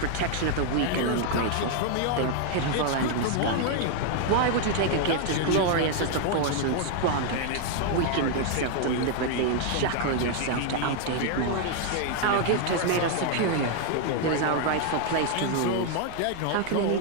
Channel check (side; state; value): both; different; correlation 0.00